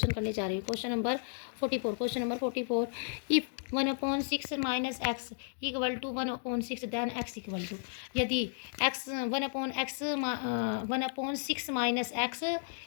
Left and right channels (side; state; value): right; silent; digital silence